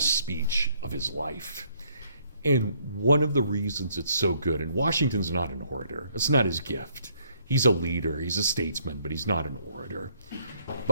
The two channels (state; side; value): inverted; both; correlation -0.67